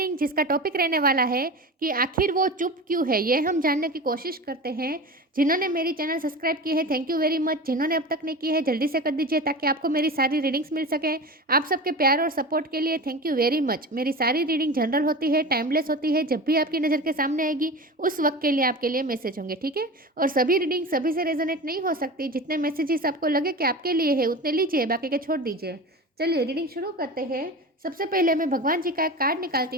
जिसका टॉपिक रहने वाला है कि आखिर वो चुप क्यों है। ये हम जानने की कोशिश करते हैं। जिन्होंने मेरी चैनल सब्सक्राइब की है, थैंक यू वेरी मच। जिन्होंने अब तक नहीं की है, जल्दी से कर दीजिए ताकि आपको मेरी सारी रीडिंग्स मिल सके। आप सबके प्यार और सपोर्ट के लिए थैंक यू वेरी मच। मेरी सारी रीडिंग जनरल होती है, टाइमलेस होती है। जब भी आपकी नज़र के सामने आएगी उस वक्त के लिए आपके लिए मैसेज होंगे, ठीक है। और सभी रीडिंग सभी से रेजोनेट नहीं हो सकती। जितने मैसेजेस आपको लगे कि आपके लिए है उतने लीजिए, बाकी के छोड़ दीजिए। चलिए रीडिंग शुरू करते हैं। सबसे पहले मैं भगवान जी का एक कार्ड निकालती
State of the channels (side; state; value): both; normal; correlation 0.30